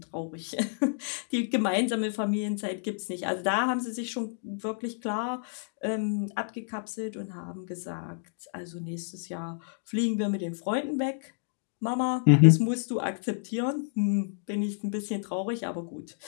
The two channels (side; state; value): right; silent; digital silence